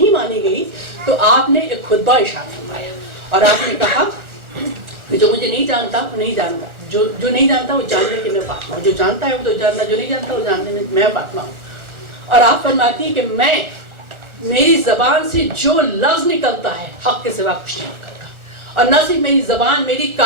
مانی گئی تو آپ نے ایک خطبہ ارشاد فرمایا اور آپ نے کہا کہ جو مجھے نہیں جانتا وہ نہیں جانتا، جو نہیں جانتا وہ جاننے کہ میں فاطمہ ہوں، جو جانتا ہے وہ تو جانتا، جو نہیں جانتا وہ جاننے میں فاطمہ ہوں. اور آپ فرماتی ہیں کہ میری زبان سے جو لفظ نکلتا ہے حق کے سوا کچھ نہیں نکلتا، اور نہ صرف میری زبان، میری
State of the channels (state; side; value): late; left; 1.4 ms